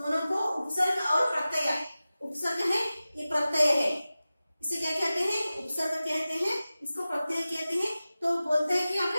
को उपसर्ग और प्रत्यय, उपसर्ग है ये प्रत्यय है, इसे क्या कहते हैं? उपसर्ग कहते हैं, इसको प्रत्यय कहते हैं। तो बोलते हैं कि आप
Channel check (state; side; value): inverted; both; correlation -0.96